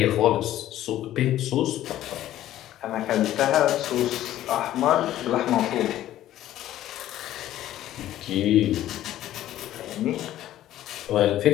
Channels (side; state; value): right; quieter; 13.2 dB